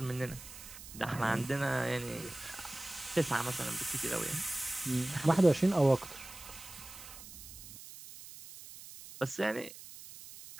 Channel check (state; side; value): noise; right; hiss, 15 dB below the sound